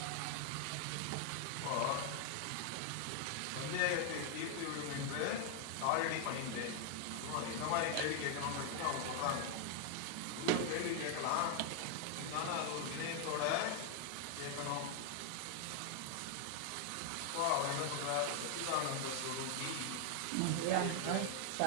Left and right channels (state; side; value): different; both; correlation 0.00